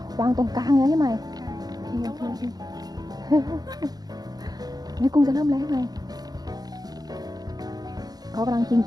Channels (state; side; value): late; left; 0.19 ms